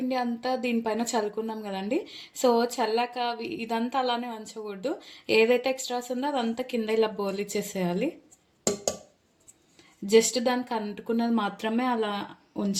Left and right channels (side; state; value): both; identical; correlation 1.00